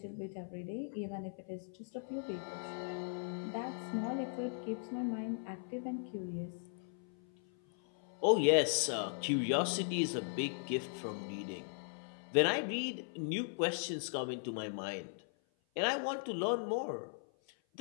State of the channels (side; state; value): right; silent; 52 dB below the other